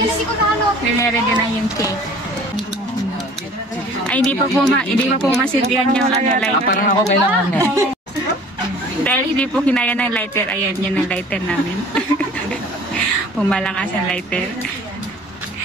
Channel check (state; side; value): normal; both; correlation 0.49